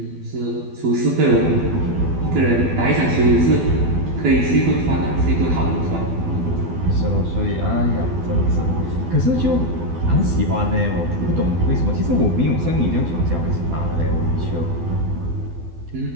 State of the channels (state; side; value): late; left; 12 ms